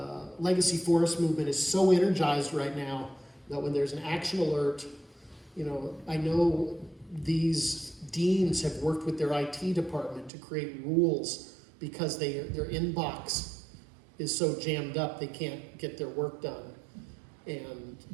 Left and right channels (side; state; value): left; drops out; at 10.3 s